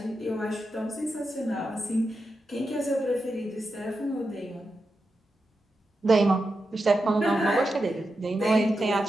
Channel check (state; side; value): normal; both; correlation 0.89